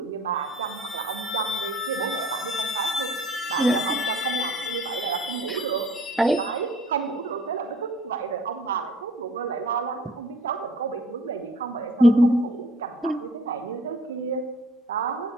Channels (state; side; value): normal; both; correlation 0.52